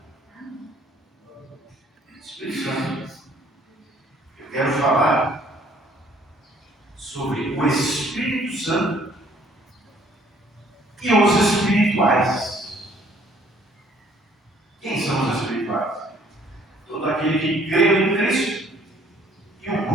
Espírito Santo. Eu quero falar sobre o Espírito Santo e os espirituais. Quem são os espirituais? Todo aquele que crê em Cristo e o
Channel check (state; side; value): normal; both; correlation 0.60